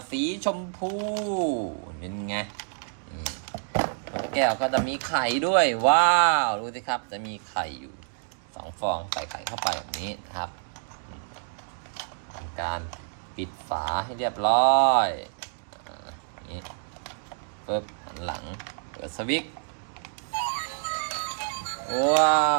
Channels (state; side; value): silent; left; digital silence